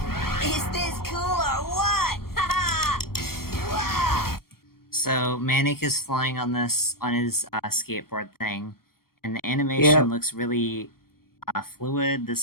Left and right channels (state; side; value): late; right; 0.94 ms